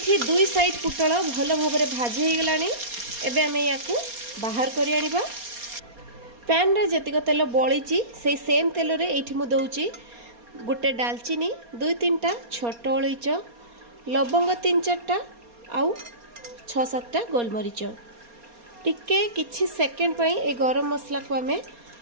2 साइड पटल भलो भाबरे भाजी हो गलानी। एबे हमें याकू बाहर करि आनिबा। पैन रे जतिक तेल बळीची से सेम तेल रे एठी मु दउची गोटे दालचीनी 2-3टा छोट अलैच लवंग 3-4टा आउ 6-7टा गोलमरीच टिके किछि सेकंड पई ए गरम मसला को हमें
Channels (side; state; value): left; late; 4.3 ms